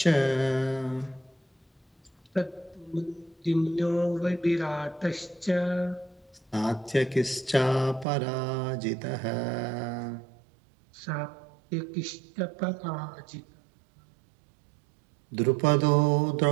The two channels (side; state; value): left; drops out; at 8.1 s